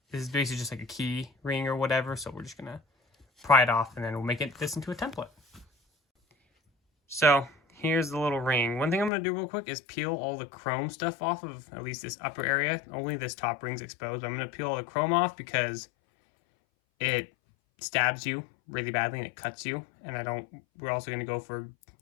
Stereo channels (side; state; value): right; drops out; at 9.1 s